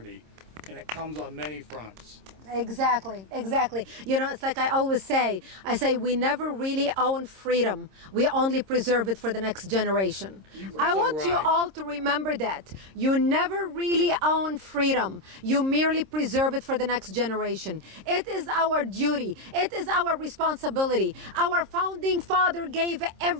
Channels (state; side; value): late; left; 26 ms